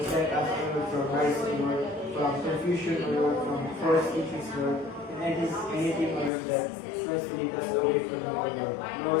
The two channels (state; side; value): drops out; right; at 6.3 s